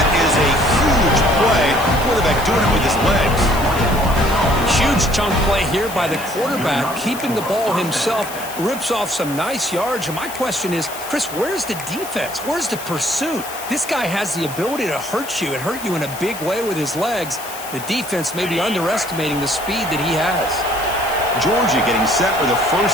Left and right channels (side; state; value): left; noise; hiss, 12 dB below the sound